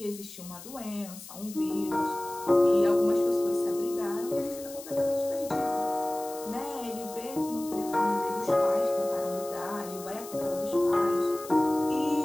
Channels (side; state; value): left; noise; hiss, 15 dB below the sound